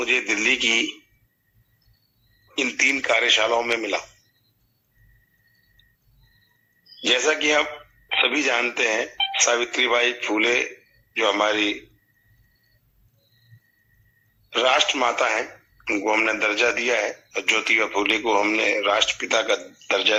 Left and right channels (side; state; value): both; identical; correlation 1.00